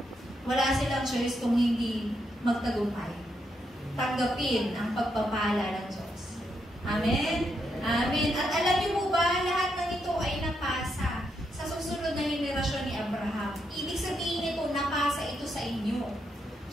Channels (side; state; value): both; normal; correlation 0.80